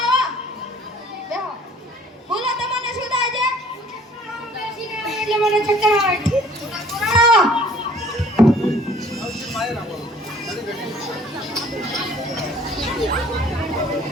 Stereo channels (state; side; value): normal; both; correlation 0.55